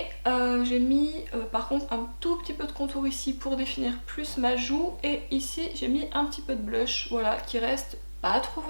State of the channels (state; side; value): inverted; both; correlation -1.00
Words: j'ai mis par contre un tout petit peu de contour ici pour définir plus ma joue. Et ici j'ai mis un petit peu de blush, voilà, qui reste pas trop